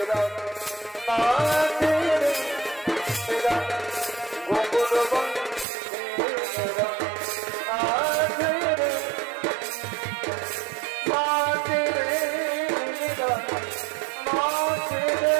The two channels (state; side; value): drops out; left; at 5.7 s